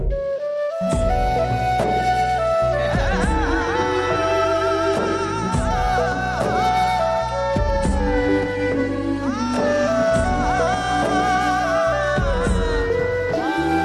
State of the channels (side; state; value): both; identical; correlation 1.00